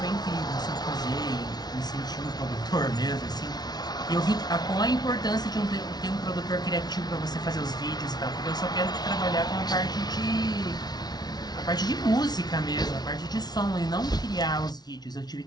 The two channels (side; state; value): right; late; 0.19 ms